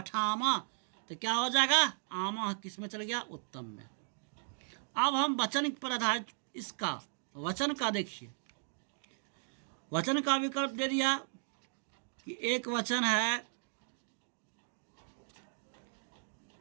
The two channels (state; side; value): silent; left; digital silence